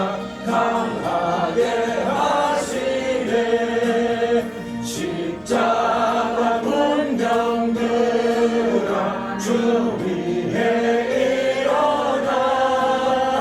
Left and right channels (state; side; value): identical; both; correlation 1.00